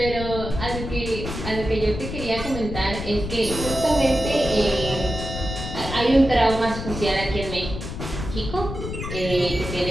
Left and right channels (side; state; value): left; noise; rumble, 7 dB below the sound